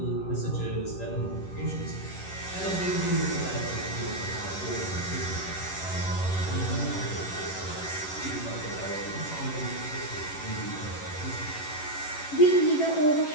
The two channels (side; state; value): right; late; 11 ms